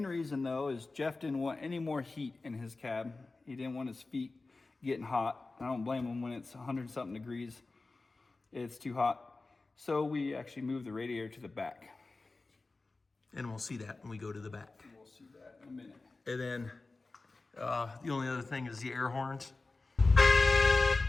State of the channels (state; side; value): quieter; right; 3.5 dB